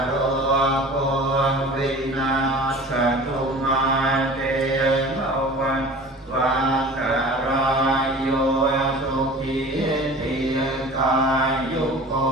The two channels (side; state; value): both; normal; correlation 0.41